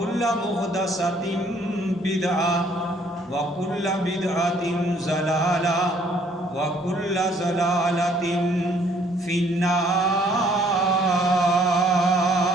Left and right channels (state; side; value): normal; both; correlation 0.62